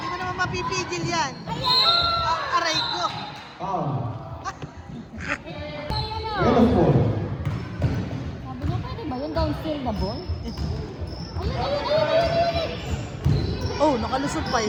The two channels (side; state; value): both; identical; correlation 1.00